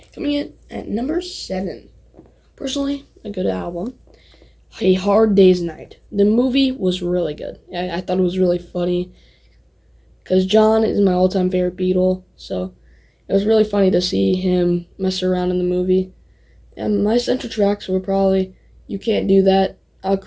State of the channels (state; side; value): identical; both; correlation 1.00